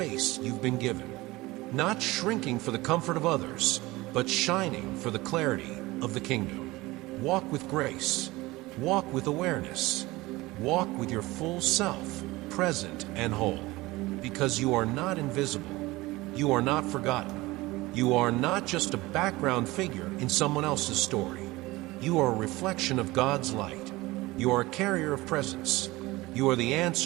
you've been given. Not shrinking for the comfort of others, but shining for the clarity of the kingdom. Walk with grace. Walk with awareness. Walk with your full self, present and whole. Because you are not invisible. You are not forgotten. You are not just a background figure in someone else's story. You are a reflection of God's light. You are a carrier of presence. You are the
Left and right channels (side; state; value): left; quieter; 20.3 dB